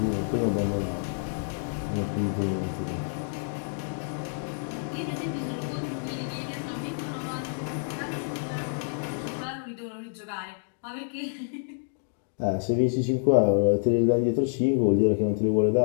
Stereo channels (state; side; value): silent; right; digital silence